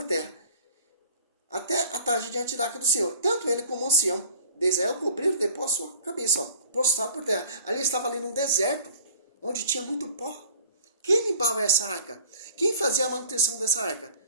terra, até a tarde diante da arca do Senhor. Tanto ele como o ancião de Israel cobriram depois a sua cabeça, ó, prostrado por terra. Ali estava ali num deserto, onde tinha muito pó. Quem limpava essa arca? Quem fazia a manutenção dessa arca?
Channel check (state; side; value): inverted; both; correlation -0.46